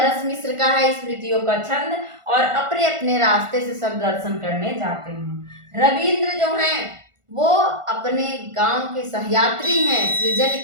मिश्र का है स्मृतियों का छंद और अपने अपने रास्ते से सब दर्शन करने जाते हैं। रविंद्र जो हैं वो अपने गांव के सहयात्री हैं, सृजन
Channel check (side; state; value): left; late; 1.5 ms